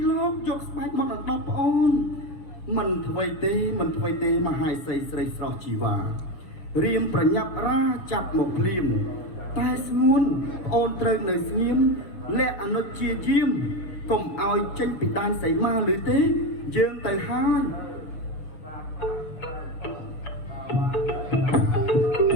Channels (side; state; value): right; late; 6.9 ms